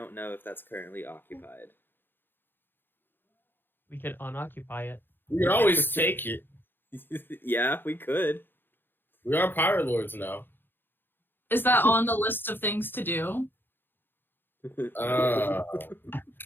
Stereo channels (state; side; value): late; right; 0.099 ms